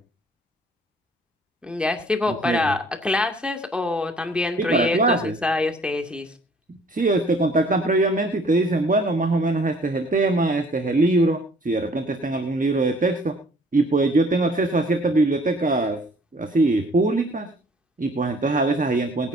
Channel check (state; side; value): normal; both; correlation 0.56